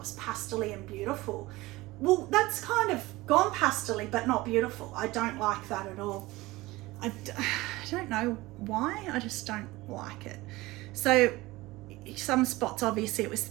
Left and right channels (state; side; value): quieter; left; 19.9 dB